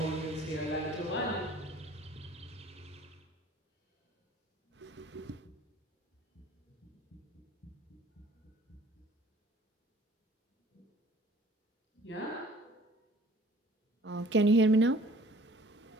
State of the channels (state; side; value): normal; both; correlation 0.52